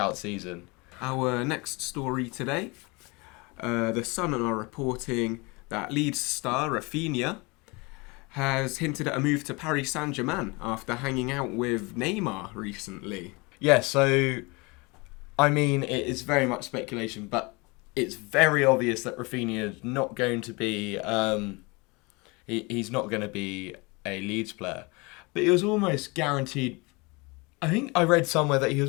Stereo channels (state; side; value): quieter; right; 26.8 dB